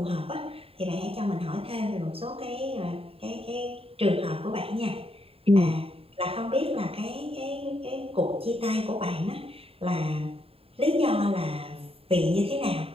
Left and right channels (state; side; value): late; left; 0.27 ms